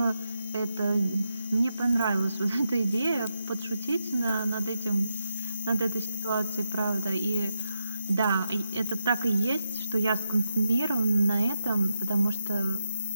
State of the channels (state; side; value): inverted; both; correlation -0.85